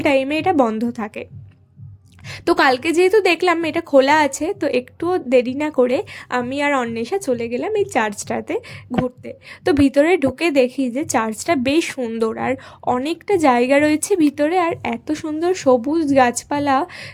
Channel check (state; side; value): identical; both; correlation 1.00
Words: টাইমে এটা বন্ধ থাকে। তো কালকে যেহেতু দেখলাম এটা খোলা আছে, তো একটুও দেরি না করে আমি আর অন্বেষা চলে গেলাম এই চার্চটাতে ঘুরতে। তো ভিতরে ঢুকে দেখি যে চার্চটা বেশ সুন্দর, আর অনেকটা জায়গা রয়েছে ভিতরে, আর এত সুন্দর সবুজ গাছপালা,